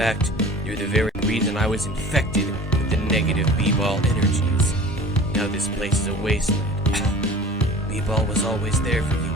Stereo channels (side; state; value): both; normal; correlation 0.42